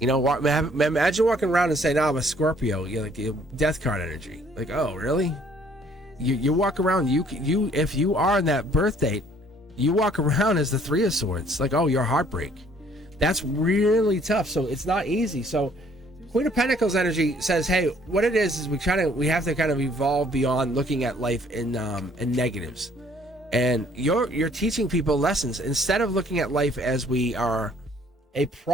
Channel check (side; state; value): both; normal; correlation 0.61